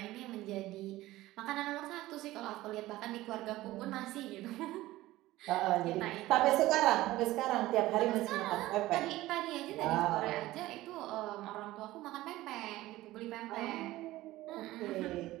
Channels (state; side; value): quieter; left; 16.9 dB